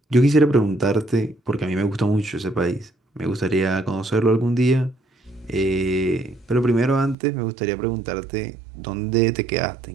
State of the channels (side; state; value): left; drops out; at 7.2 s